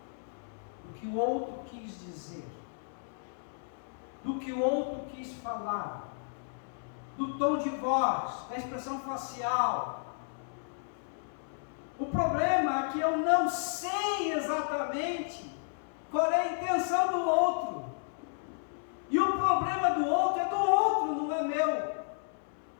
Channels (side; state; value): right; silent; 56 dB below the other